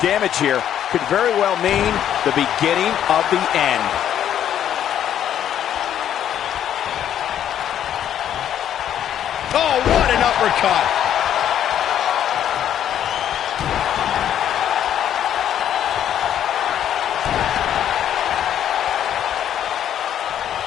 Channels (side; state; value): right; quieter; 10.2 dB